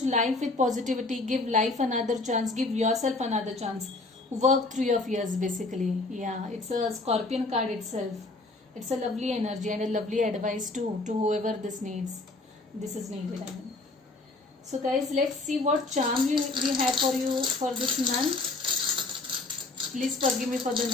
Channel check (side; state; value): right; quieter; 3.3 dB